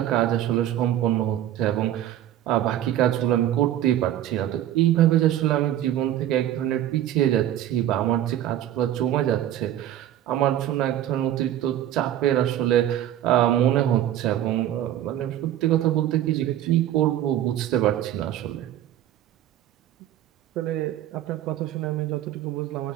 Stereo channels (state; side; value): quieter; left; 12.1 dB